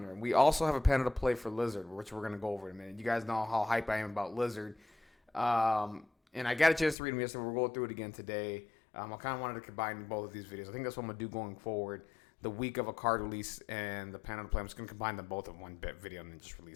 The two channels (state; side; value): drops out; right; at 7.0 s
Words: We also have a panel to play for Lizard, which we're going to go over in a minute. You guys know how hype I am about Lizard. And I got a chance to read them yesterday. We're going through it again today. I kind of wanted to combine both of these videos. I think that's what I'm going to do going forward. The week of a card release and the panel to play. I'm just going to combine them both in one video and then just